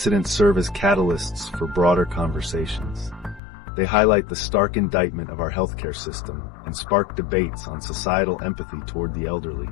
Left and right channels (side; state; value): right; drops out; at 3.4 s